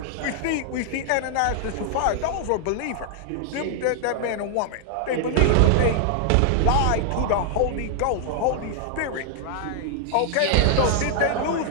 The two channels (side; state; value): both; different; correlation -0.01